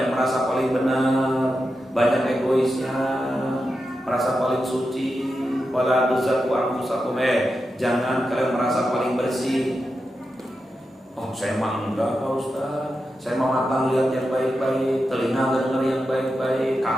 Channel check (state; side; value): normal; both; correlation 0.89